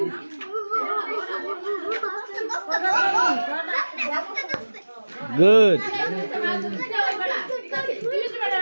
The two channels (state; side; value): inverted; both; correlation -1.00